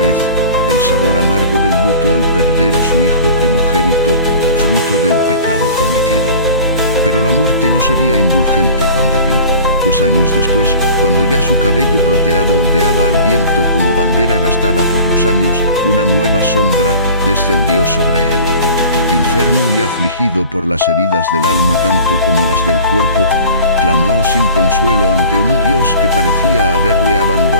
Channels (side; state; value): both; inverted; correlation -0.43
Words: el sabor amargo del luto al perder a su hijo primogénito, fruto del pecado cometido. Pero la muerte no sería indulgente con David, pues años después, cuando ya su cabello plateado ondeaba al viento como bandera gastada por los años, una nueva sombra descendió sobre él. Enfermo y afligido por las heridas del alma tanto como las del cuerpo, clamó sin consuelo ante un Dios que parecía haberle